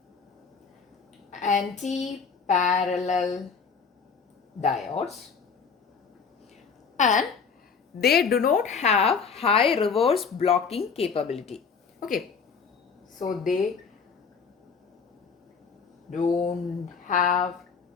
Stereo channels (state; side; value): quieter; right; 5.7 dB